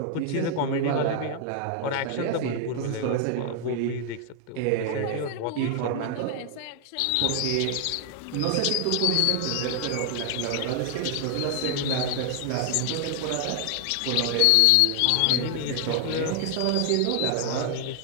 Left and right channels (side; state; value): both; different; correlation 0.00